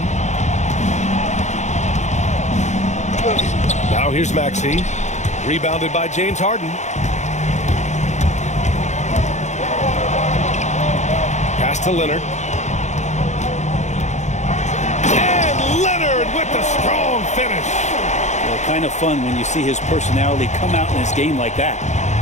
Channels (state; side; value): late; right; 0.34 ms